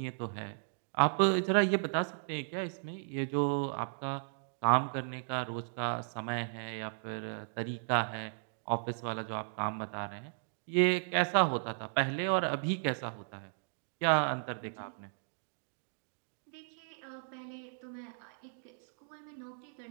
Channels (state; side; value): silent; left; digital silence